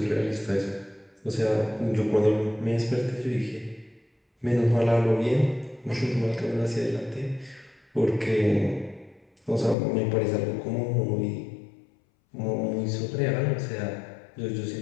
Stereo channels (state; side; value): drops out; right; at 9.8 s